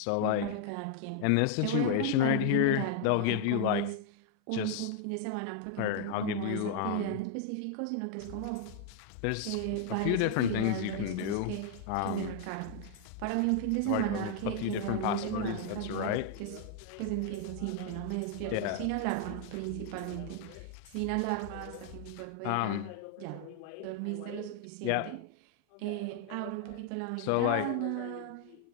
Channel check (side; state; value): both; different; correlation 0.00